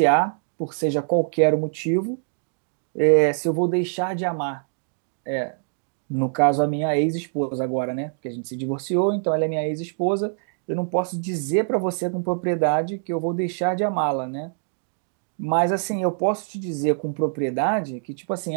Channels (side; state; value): left; silent; digital silence